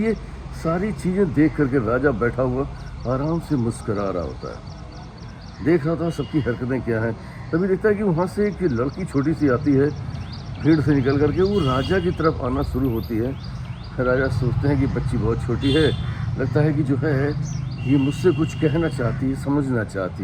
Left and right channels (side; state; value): both; identical; correlation 1.00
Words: सारी चीज़ें देख करके राजा बैठा हुआ आराम से मुस्करा रहा होता है, देख रहा था सबकी हरकतें क्या हैं। तभी देखता है कि वहाँ से एक लड़की छोटी सी आती है, भीड़ से निकल करके वो राजा की तरफ आना शुरू होती है। राजा सोचते हैं कि बच्ची बहुत छोटी है, लगता है कि जो है ये मुझसे कुछ कहना चाहती है, समझना